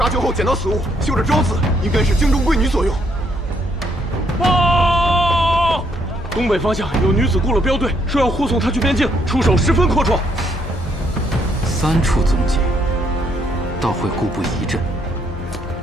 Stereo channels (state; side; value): normal; both; correlation 0.71